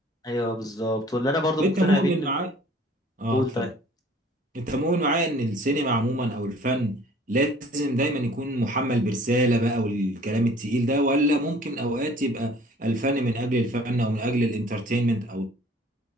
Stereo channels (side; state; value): both; normal; correlation 0.52